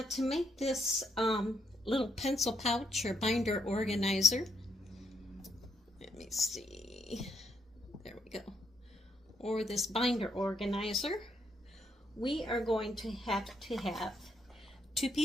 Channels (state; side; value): normal; both; correlation 0.76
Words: to make this little pencil pouch or binder organizer. Let me see. There we go. Or this binder organizer. We are going to have 2